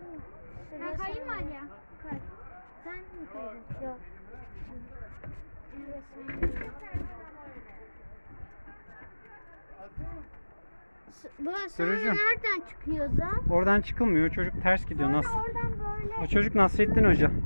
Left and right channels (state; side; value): inverted; both; correlation -1.00